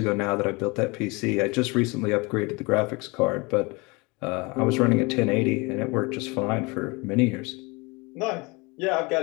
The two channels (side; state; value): right; quieter; 26.9 dB